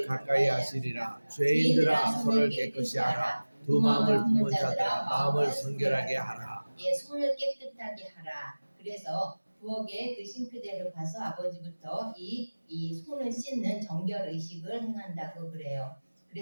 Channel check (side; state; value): both; inverted; correlation -1.00